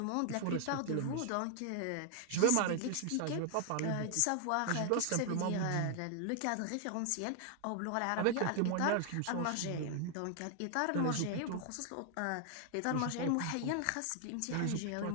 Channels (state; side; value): different; both; correlation 0.00